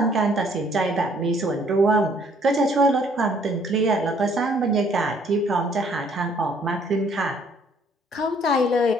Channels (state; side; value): normal; both; correlation 0.62